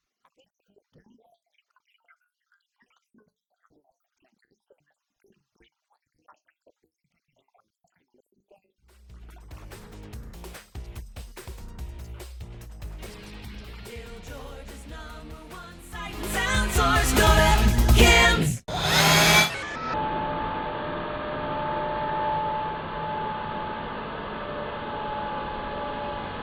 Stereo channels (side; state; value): both; identical; correlation 1.00